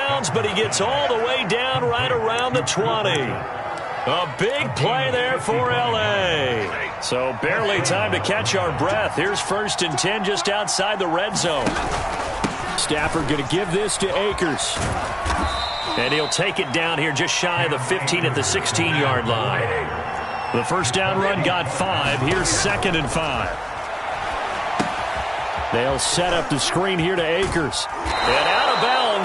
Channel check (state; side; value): identical; both; correlation 1.00